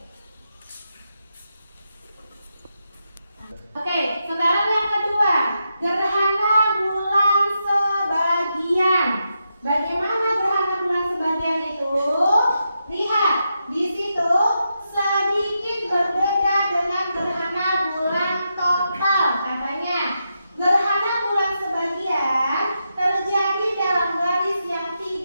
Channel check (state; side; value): inverted; both; correlation -0.85